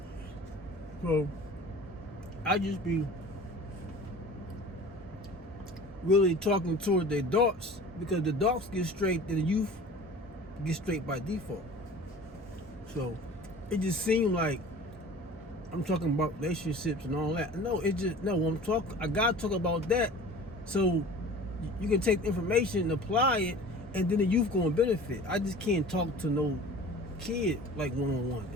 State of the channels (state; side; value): normal; both; correlation 0.42